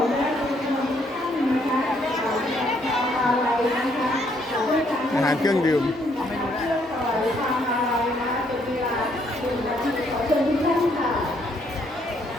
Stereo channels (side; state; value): both; normal; correlation 0.70